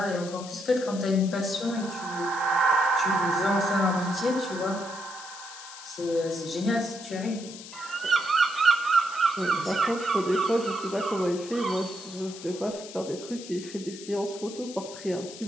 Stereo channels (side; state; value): left; noise; hiss, 14 dB below the sound